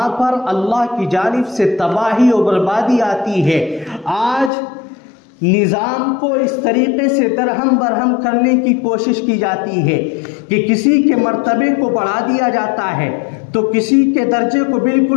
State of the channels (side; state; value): right; drops out; at 4.5 s